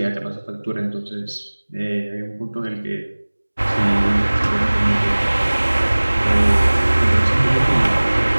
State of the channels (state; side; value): inverted; both; correlation -1.00